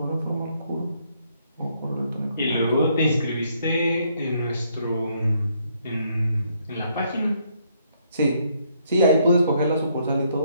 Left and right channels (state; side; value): inverted; both; correlation -0.70